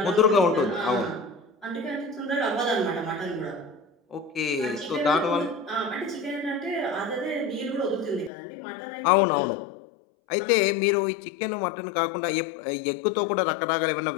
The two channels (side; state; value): right; drops out; at 8.3 s